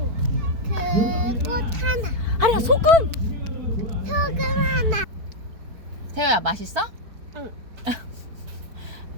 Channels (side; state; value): left; late; 4.5 ms